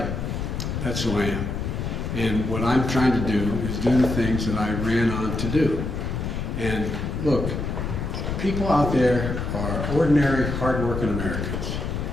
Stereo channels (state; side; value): noise; left; rumble, 3 dB below the sound